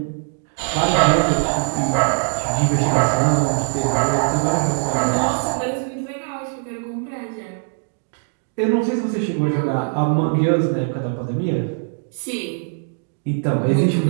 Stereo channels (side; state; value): left; silent; digital silence